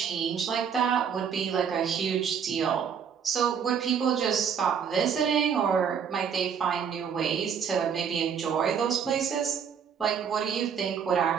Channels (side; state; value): left; quieter; 7.4 dB